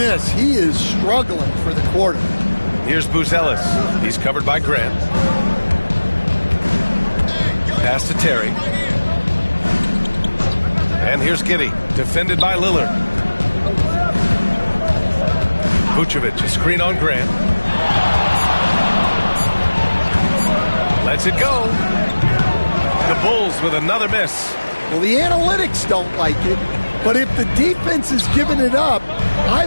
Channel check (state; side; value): inverted; both; correlation -1.00